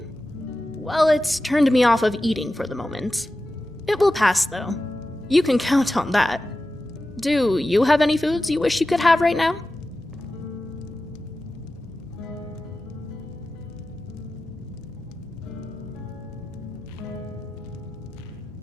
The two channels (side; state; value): both; normal; correlation 0.93